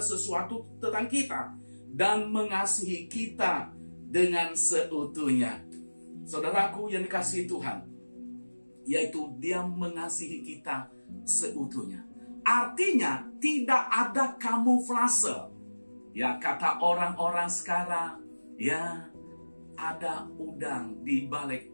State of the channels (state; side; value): inverted; both; correlation -1.00